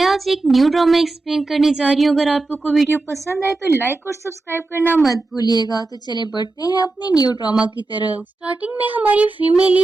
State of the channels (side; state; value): left; quieter; 3.3 dB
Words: आज एक new drama explain करने जा रही हूँ। अगर आपको कोई वीडियो पसंद आए तो लाइक और सब्सक्राइब करना मत भूलिएगा। तो चले बढ़ते हैं अपने न्यू ड्रामा की तरफ। स्टार्टिंग में हमारी फीमेल